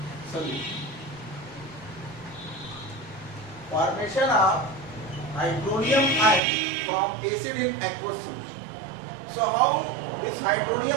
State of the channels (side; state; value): left; drops out; at 6.4 s